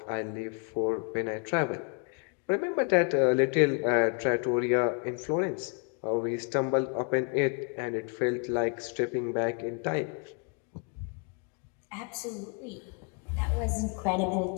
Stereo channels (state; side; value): quieter; right; 38.5 dB